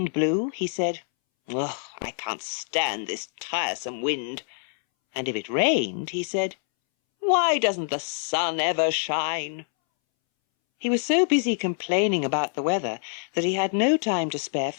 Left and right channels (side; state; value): right; silent; 61 dB below the other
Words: blew, he said, "Ugh, I can't stand this tiresome wind." And if it rained, he said, "Why doesn't the sun ever shine?" He was so busy complaining about the weather that he had no time to spare